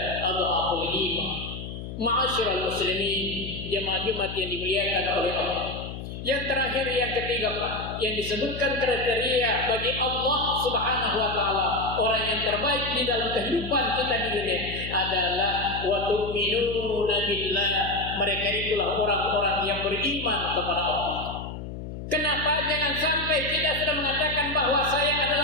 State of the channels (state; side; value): noise; left; hum, 9 dB below the sound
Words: adhaful iman." Ma'asyiral muslimin, jemaah Jumat yang dimuliakan oleh Allah. Yang terakhir, yang ketiga Pak, yang disebutkan kriteria bagi Allah Subhanahu wa taala orang yang terbaik di dalam kehidupan kita di dunia adalah wa tu'minuna billah. Mereka itulah orang-orang yang beriman kepada Allah. Kenapa jangan sampai kita sudah mengatakan bahwa saya